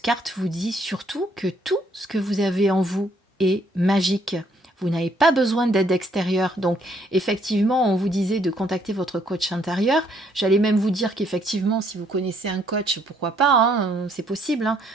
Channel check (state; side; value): normal; both; correlation 0.68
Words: vous dit surtout que tout ce que vous avez en vous est magique. Vous n'avez pas besoin d'aide extérieure. Donc, effectivement, on vous disait de contacter votre coach intérieur. J'allais même vous dire qu'effectivement, si vous connaissez un coach, pourquoi pas, hein, c'est possible, hein,